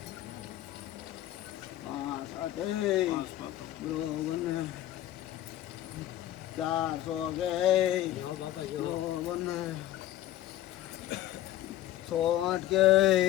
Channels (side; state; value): right; quieter; 13.8 dB